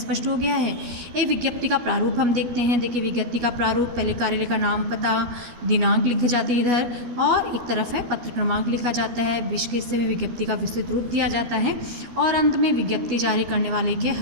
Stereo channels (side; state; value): left; late; 13 ms